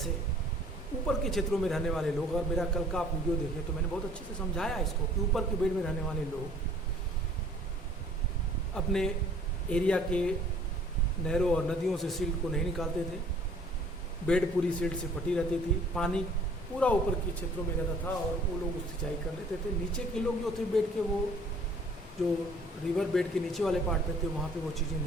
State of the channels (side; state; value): both; normal; correlation 0.55